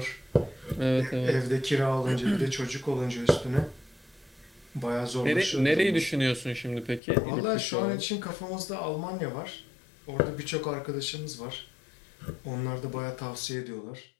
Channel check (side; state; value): right; drops out; at 7.0 s